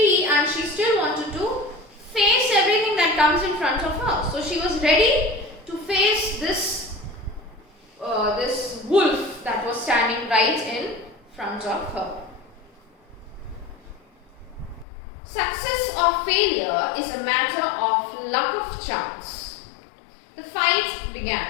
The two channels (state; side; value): drops out; right; at 14.9 s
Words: and she still wanted to face everything that comes in front of her. So she was ready to face this wolf that was standing right in front of her. Success or failure is a matter of luck of chance. The fight